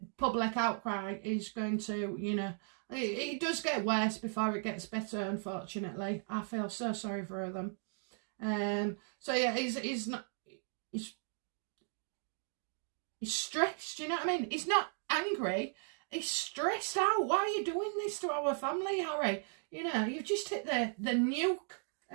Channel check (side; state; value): left; silent; 53 dB below the other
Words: public outcry is going to, you know, it does get worse before it gets better, unfortunately. I feel so sorry for them. So yeah, he's stressed, you know what I mean? He's not angry. He's stressed out. Why are you doing this to our family, Harry? You know, you've just hit the